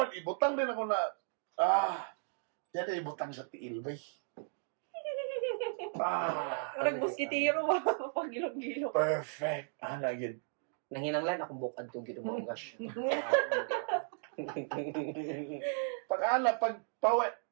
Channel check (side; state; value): left; silent; 54 dB below the other